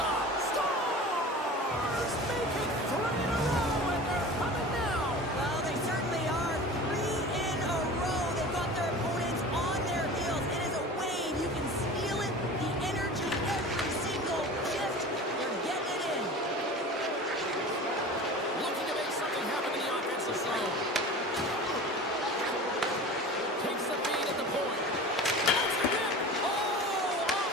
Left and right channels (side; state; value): both; normal; correlation 0.36